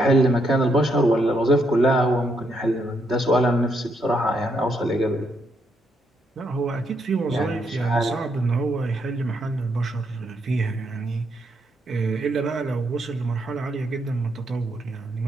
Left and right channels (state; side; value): normal; both; correlation 0.76